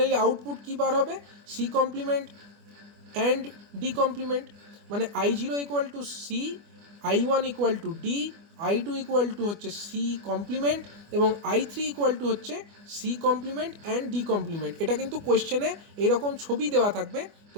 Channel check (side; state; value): left; late; 24 ms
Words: আউটপুট কী বার হবে? C complement and D complement. মানে I0 equal to C, I1 equal to D, I2 equal to হচ্ছে সি কমপ্লিমেন্ট, এবং I3 ইকুয়াল টু হচ্ছে C complement and D complement. এটা কিন্তু কোয়েশ্চেনে এইরকম ছবি দেওয়া থাকবে,